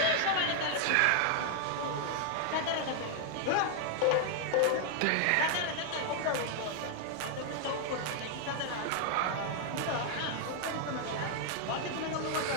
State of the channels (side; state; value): both; different; correlation 0.00